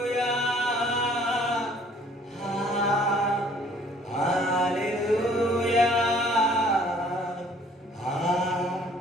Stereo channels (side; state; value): both; normal; correlation 0.57